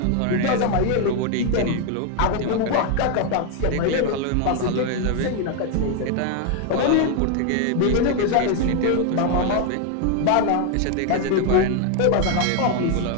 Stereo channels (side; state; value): both; different; correlation 0.01